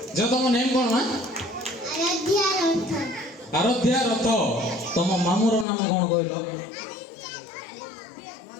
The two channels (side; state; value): right; drops out; at 5.7 s